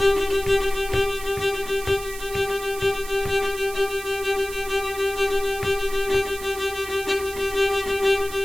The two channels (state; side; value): noise; right; hiss, 13 dB below the sound